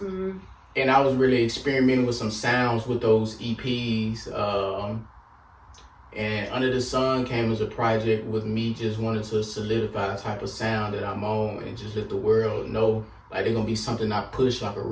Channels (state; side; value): identical; both; correlation 1.00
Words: and I was really experimenting with some sounds with those EPs. And Under the Sun came as a project with me just wanting to solidify a type of sound that I'm on and just let the world know like they're gonna be something I push, like a